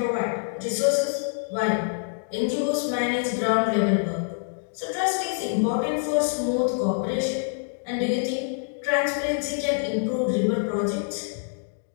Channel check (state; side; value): silent; right; digital silence